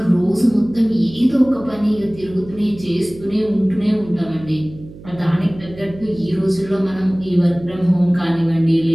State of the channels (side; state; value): right; noise; hum, 18 dB below the sound